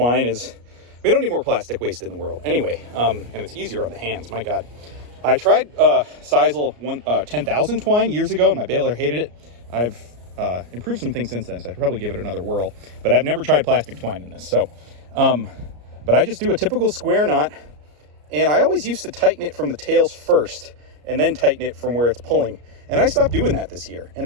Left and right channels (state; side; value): late; left; 34 ms